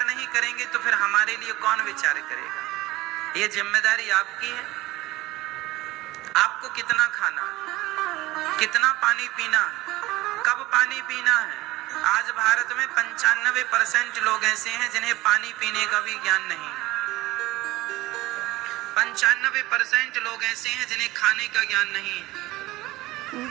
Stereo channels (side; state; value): left; quieter; 18.7 dB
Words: नहीं करेंगे तो फिर हमारे लिए कौन विचार करेगा? ये जिम्मेदारी आपकी है। आपको कितना खाना, कितना पानी पीना, कब पानी पीना है। आज भारत में 95% लोग ऐसे हैं जिन्हें पानी पीने का भी ज्ञान नहीं है। 95% लोग ऐसे हैं जिन्हें खाने का ज्ञान नहीं है।